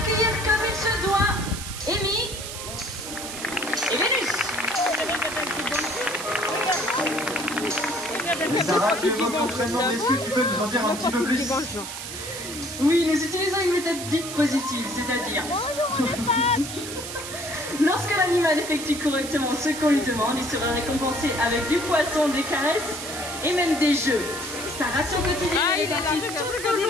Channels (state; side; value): noise; right; hiss, 9 dB below the sound